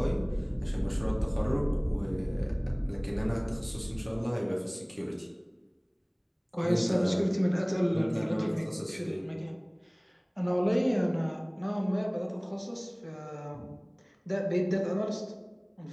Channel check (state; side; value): identical; both; correlation 1.00